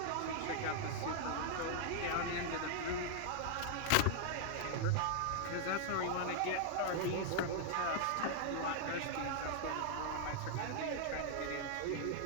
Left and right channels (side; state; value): both; different; correlation -0.01